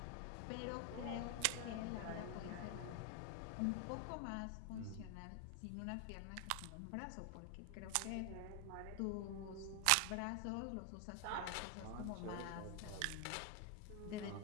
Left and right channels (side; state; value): both; different; correlation 0.00